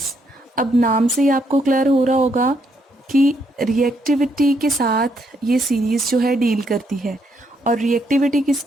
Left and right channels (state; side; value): normal; both; correlation 0.74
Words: अब नाम से ही आपको क्लियर हो रहा होगा कि रिएक्टिविटी के साथ ये सीरीज़ जो है डील करती है। और रिएक्टिविटी